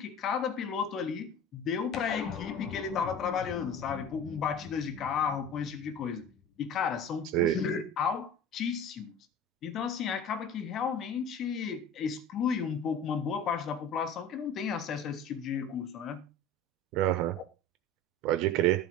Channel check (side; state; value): both; normal; correlation 0.37